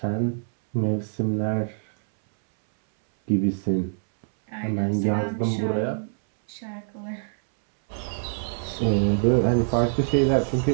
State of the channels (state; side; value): silent; left; 62 dB below the other